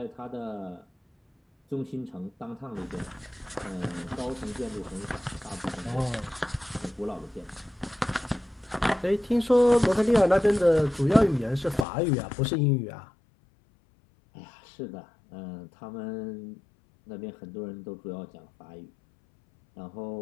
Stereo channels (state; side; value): drops out; right; at 11.9 s